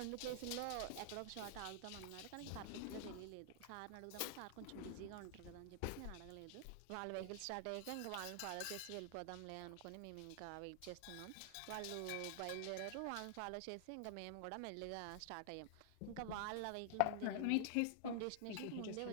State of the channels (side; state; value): both; different; correlation 0.00